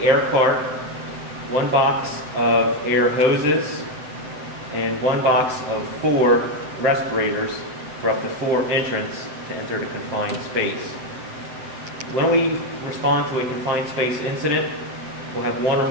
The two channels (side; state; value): left; late; 7.6 ms